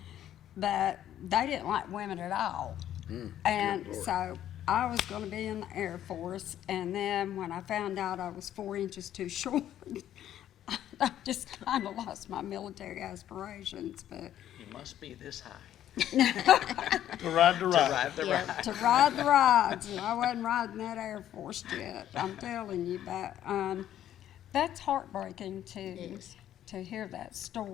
but they didn't like women at all. And so I was going to be in the Air Force, and then when I found out I was 4 inches too short, I just kind of lost my military aspirations. But You must be this high. To ride the ride. Ride the Yeah. ride. to ride the rides, and I wasn't riding that Air Force jet, I'm telling you. But that's heartbreaking is. to hear that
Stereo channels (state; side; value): quieter; right; 11.5 dB